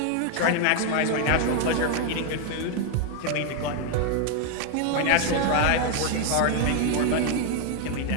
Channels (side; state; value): both; different; correlation 0.00